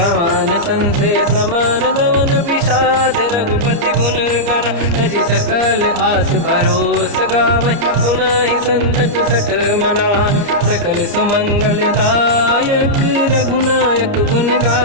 संसे समान गवन विषाद, रघुपति गुण गण तजि सकल आस भरोस गावै, सुनाहि संतत सठ मना, सकल सुमंगल दायक रघुनायक गुण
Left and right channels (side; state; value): left; late; 29 ms